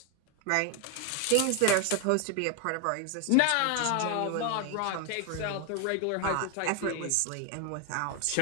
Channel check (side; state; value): both; different; correlation 0.01